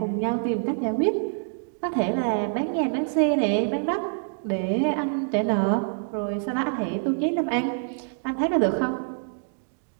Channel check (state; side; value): silent; left; digital silence